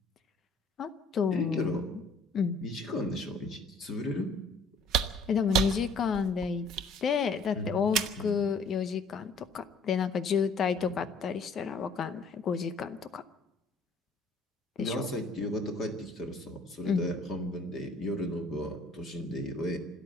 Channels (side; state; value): right; quieter; 3.0 dB